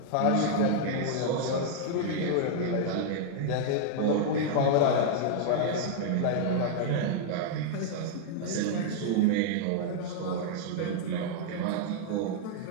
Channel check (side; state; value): both; different; correlation -0.01